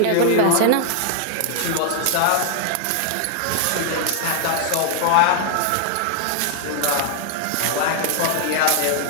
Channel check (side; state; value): both; different; correlation 0.00